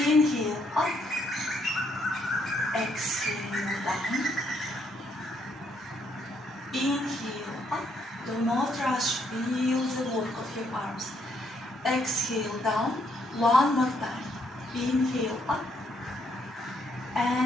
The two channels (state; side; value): normal; both; correlation 0.73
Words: up. Exhale, down. Inhale up, do not rush, feel the work of your arms. Exhale down, one more time. Inhale up